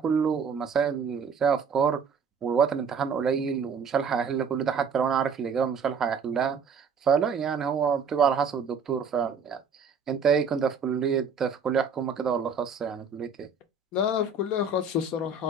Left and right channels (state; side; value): quieter; left; 4.9 dB